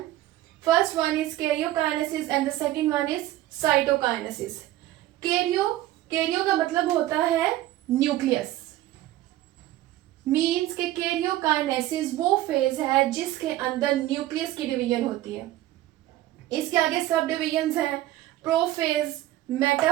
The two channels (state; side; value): quieter; left; 15.1 dB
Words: First one is karyokinesis and the second one is cytokinesis. Cairo का मतलब होता है न्यूक्लियस, मींस के कैरियोकाइनेसिस वो फेज है जिसके अंदर न्यूक्लियस की डिवीजन होती है। इसके आगे सब डिवीजन्स हैं prophase,